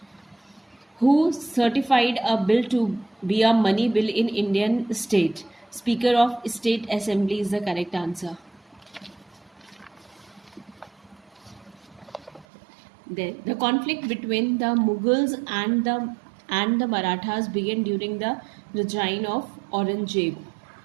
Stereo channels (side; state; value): left; drops out; at 12.5 s